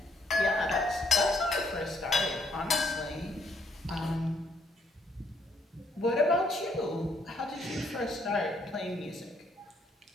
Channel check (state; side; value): normal; both; correlation 0.70